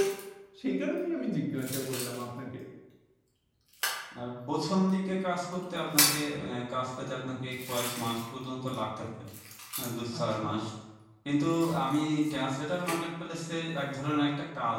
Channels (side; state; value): both; identical; correlation 1.00